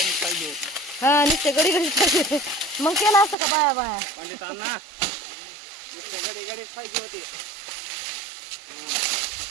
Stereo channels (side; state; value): left; drops out; at 3.4 s